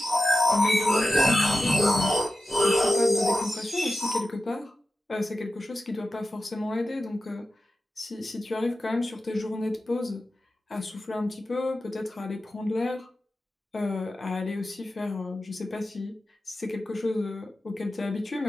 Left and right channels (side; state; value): both; normal; correlation 0.93